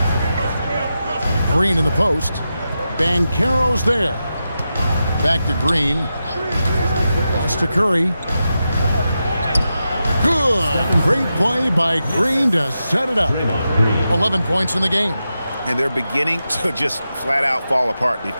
Green in the post. Banchero's there. Back to Green. Pass to Curry. Good. Great play by Green to set it up. 11 points in the game. And they're beginning to just flat out fall apart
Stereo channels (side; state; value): both; inverted; correlation -0.89